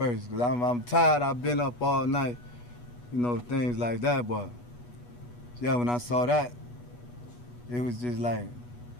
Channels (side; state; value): right; late; 8.3 ms